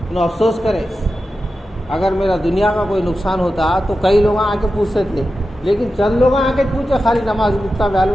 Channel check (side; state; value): both; normal; correlation 0.92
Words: انہوں افسوس کرے. اگر میرا دنیا کا کوئی نقصان ہوتا تو کئی لوگ آ کے پوچھتے تھے، لیکن چند لوگ آ کے پوچھے خالی نماز اتنا